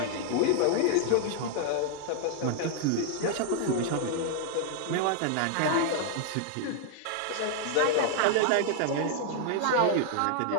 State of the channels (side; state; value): both; different; correlation 0.00